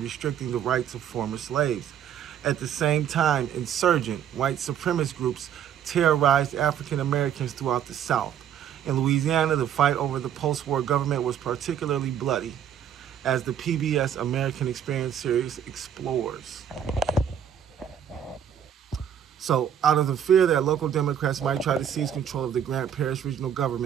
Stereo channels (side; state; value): left; quieter; 9.2 dB